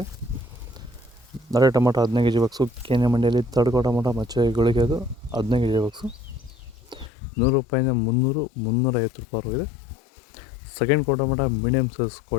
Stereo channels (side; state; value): right; drops out; at 7.1 s